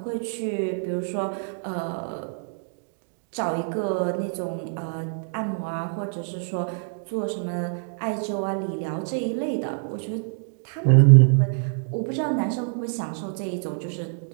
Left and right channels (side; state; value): left; silent; digital silence